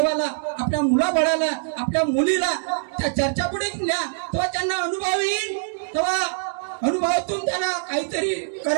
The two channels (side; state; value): left; silent; digital silence